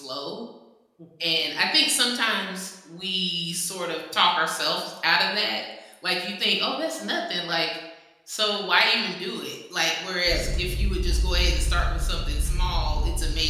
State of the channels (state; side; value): identical; both; correlation 1.00